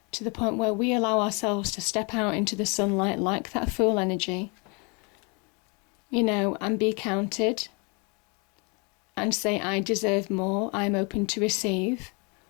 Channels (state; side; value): quieter; right; 31.9 dB